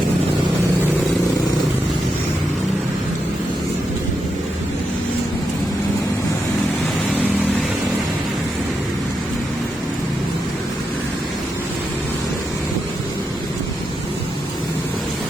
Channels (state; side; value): normal; both; correlation 0.84